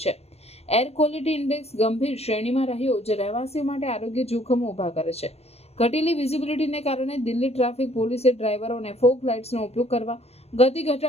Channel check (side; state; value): right; late; 0.30 ms